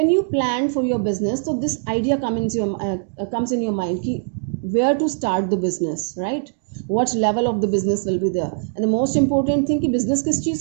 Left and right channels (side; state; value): left; silent; digital silence